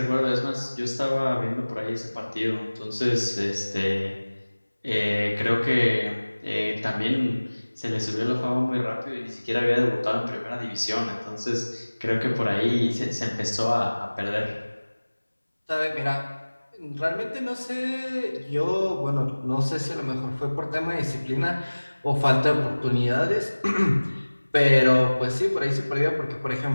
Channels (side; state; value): both; inverted; correlation -1.00